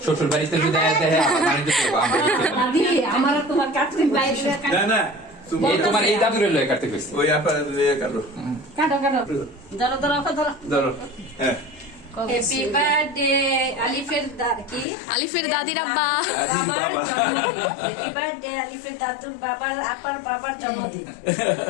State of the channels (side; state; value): right; drops out; at 14.9 s